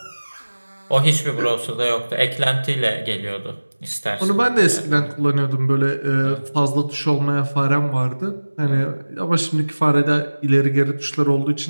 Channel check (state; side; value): inverted; both; correlation -1.00